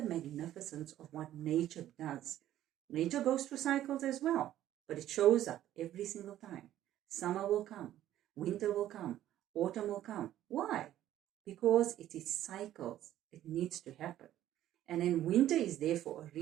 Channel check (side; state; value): left; quieter; 12.7 dB